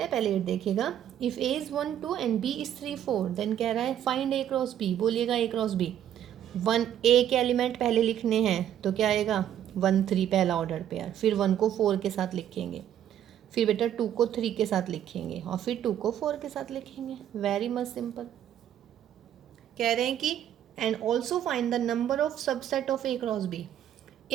हैं, पहले 8 देखिएगा। If A is 1 2 and B is 3 4, then कह रहा है फाइंड ए क्रॉस बी। बोलिएगा ए क्रॉस बी। 1 ए के एलिमेंट पहले लिखने हैं तो क्या आएगा, 1 3 पहला ऑर्डर पेयर, फिर 1 को 4 के साथ लिखेंगे, फिर बेटा 2 को 3 के साथ लिखेंगे और फिर 2 को 4 के साथ लिखेंगे। Very much simple. कह रहे हैं कि and also find the number of subset of A cross B.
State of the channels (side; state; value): left; quieter; 10.6 dB